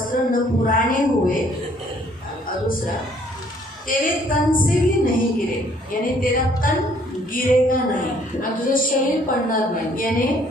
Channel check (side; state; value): both; normal; correlation 0.62